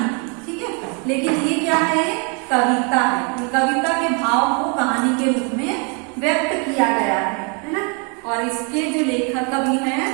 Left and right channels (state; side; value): quieter; left; 35.6 dB